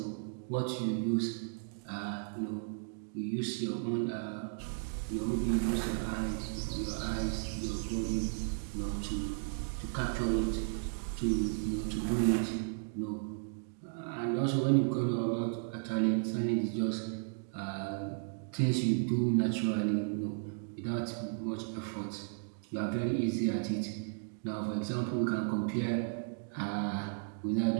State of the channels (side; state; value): left; silent; digital silence